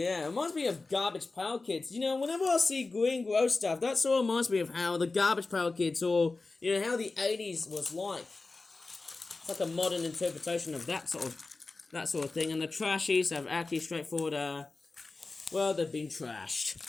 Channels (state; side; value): quieter; right; 3.6 dB